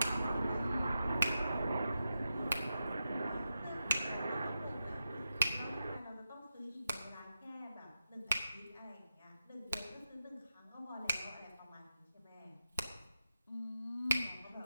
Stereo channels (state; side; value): inverted; both; correlation -0.88